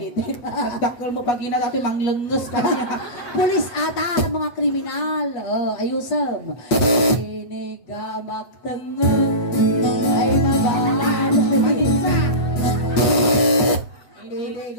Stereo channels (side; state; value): right; late; 8.4 ms